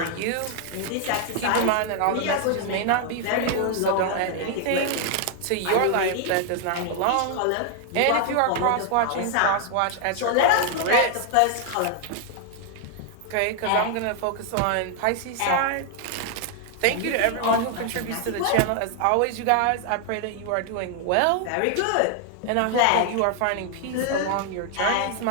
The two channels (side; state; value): both; different; correlation 0.00